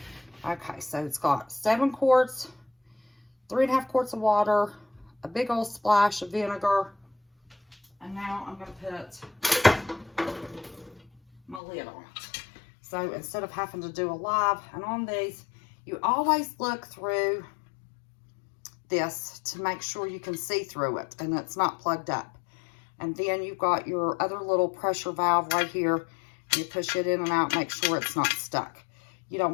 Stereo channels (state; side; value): drops out; right; at 11.6 s